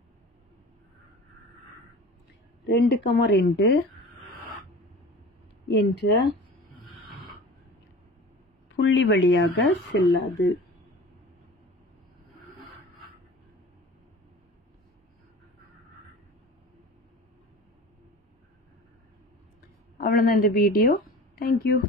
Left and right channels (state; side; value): normal; both; correlation 0.38